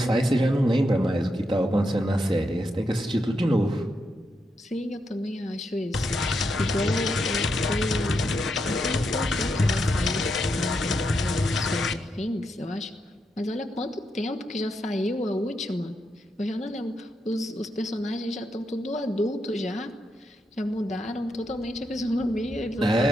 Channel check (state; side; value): normal; both; correlation 0.83